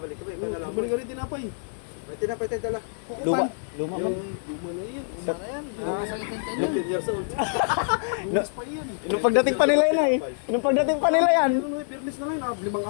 ka ba? Ikaw na lang. Balik ka rin tinapay. May tinapay tayo dala. Luma. Luma man. Luma na yun. Luma na yan. 15 years old. No, nung pagdating pa nila yan eh. Nung pagdating pa nila yan. Fitness na yun. 5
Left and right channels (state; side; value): silent; right; digital silence